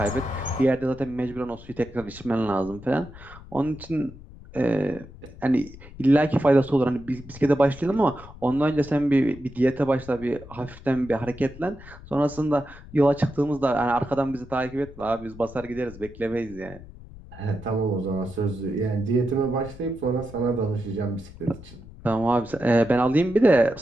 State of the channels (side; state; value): left; noise; rumble, 17 dB below the sound